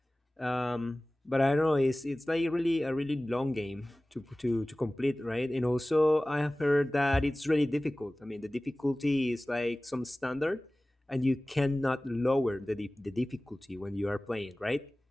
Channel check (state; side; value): normal; both; correlation 0.98